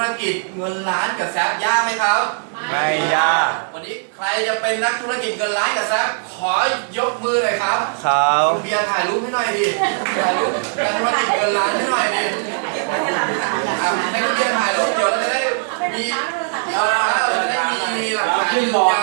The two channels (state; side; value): silent; left; 66 dB below the other